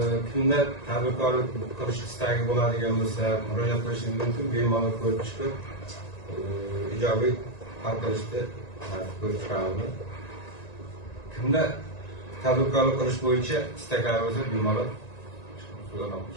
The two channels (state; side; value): late; right; 1.9 ms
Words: Kimda tadbirkorlik qilish istagi bo'ladigan bo'lsa, murojaat qilishingiz mumkin. Bemalol ko'rib chiqib, ijobiy hal qilishni ko'rib chiqamiz. Kimda tadbirkorlik qilish bo'yicha istaklari bo'lsa, bemalol so'zlab